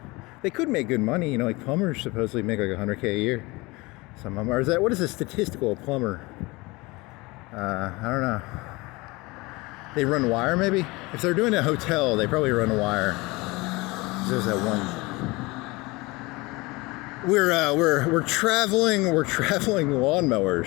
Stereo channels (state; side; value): quieter; right; 23.4 dB